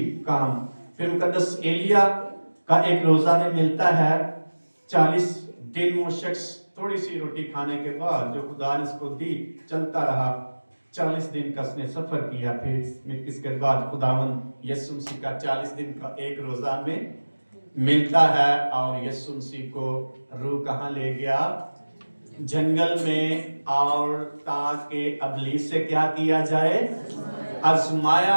काम। फिर मुकद्दस एलिया का एक रोजा में मिलता है। 40 दिन वो शख्स थोड़ी सी रोटी खाने के बाद जो खुदा ने उसको दी चलता रहा। 40 दिन का उसने सफर किया। फिर इसके बाद खुदावन यीशु मसीह का 40 दिन का एक रोजा में मिलता है। और यीशु मसीह को रूह कहाँ ले गया? जंगल में। और ताकि अबलीस से क्या किया जाए?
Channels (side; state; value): both; inverted; correlation -1.00